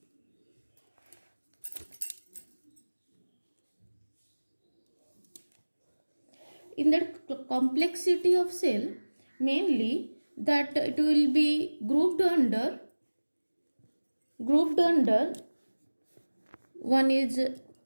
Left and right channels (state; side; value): inverted; both; correlation -1.00